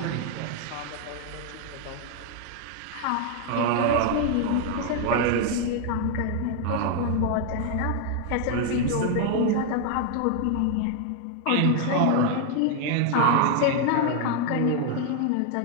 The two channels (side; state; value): both; different; correlation 0.00